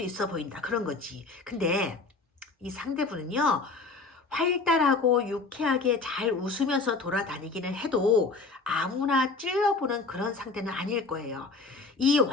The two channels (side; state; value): right; quieter; 3.9 dB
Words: 있어 보인다. 그런 거지. 근데 이 상대분은요, 활달하고 유쾌하게 잘 웃으면서 돌아다니기는 해도 아무나 찔러보는 그런 상대는 아닐 거예요. 이